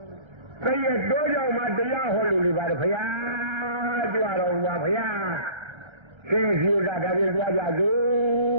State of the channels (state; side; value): late; left; 1.3 ms